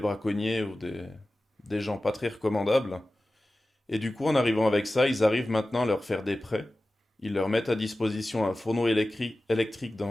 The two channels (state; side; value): normal; both; correlation 0.95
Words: ou des gens pas très recommandables. Et du coup, en arrivant avec ça, ils arrivent maintenant à leur faire des prêts. Ils leur mettent à disposition un fourneau électrique